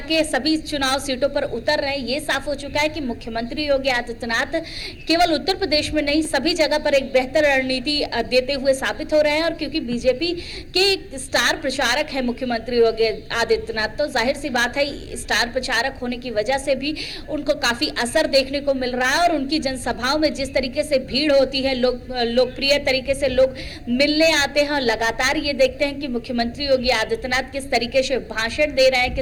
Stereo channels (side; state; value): both; identical; correlation 1.00